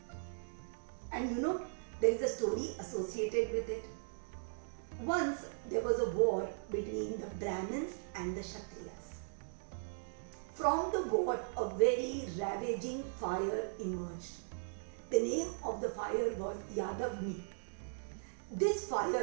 And there is a story associated with it. Once there was a war between the Brahmins and the Kshatriyas. From the war, a very ravaging fire emerged. The name of the fire was Yadavni. This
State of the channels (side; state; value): left; silent; digital silence